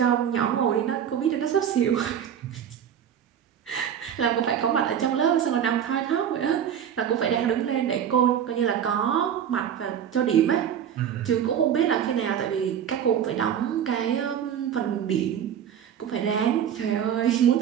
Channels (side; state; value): left; quieter; 9.0 dB